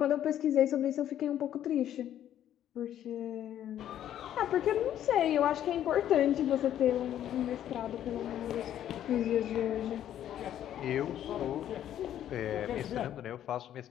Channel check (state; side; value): quieter; right; 11.1 dB